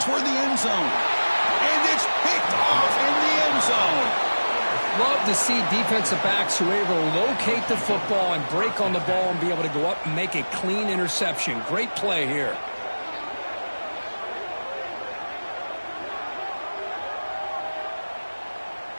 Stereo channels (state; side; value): inverted; both; correlation -1.00